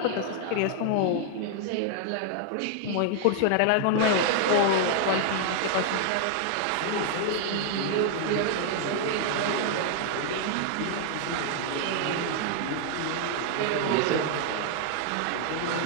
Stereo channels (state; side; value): different; both; correlation 0.00